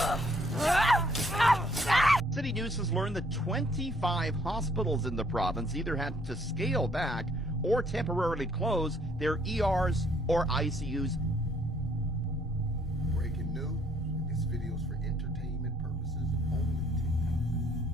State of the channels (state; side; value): normal; both; correlation 0.65